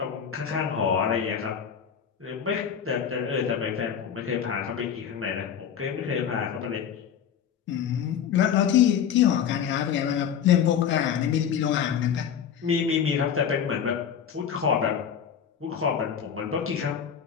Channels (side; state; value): right; quieter; 8.1 dB